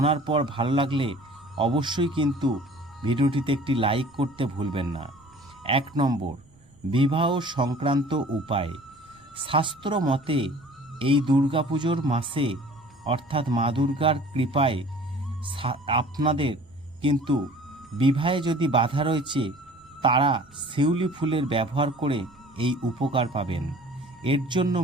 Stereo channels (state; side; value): noise; right; rumble, 29 dB below the sound